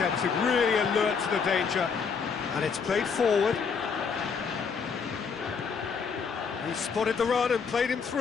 really alert to the danger. And it's played forward. He spotted the run and played him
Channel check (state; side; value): quieter; right; 5.8 dB